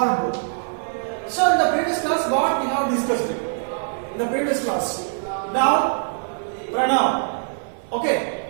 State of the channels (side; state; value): left; silent; 63 dB below the other